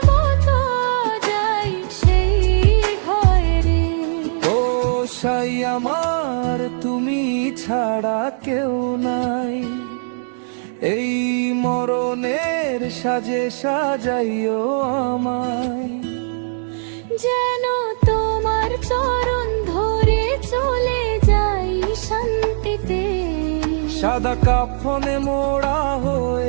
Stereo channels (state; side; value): silent; left; digital silence